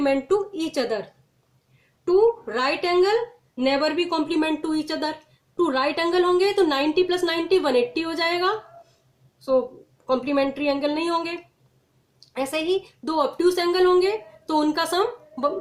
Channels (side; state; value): both; identical; correlation 1.00